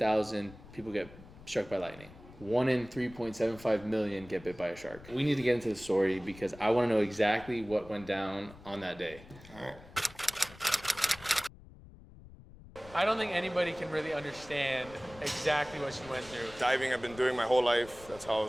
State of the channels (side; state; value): left; noise; rumble, 19 dB below the sound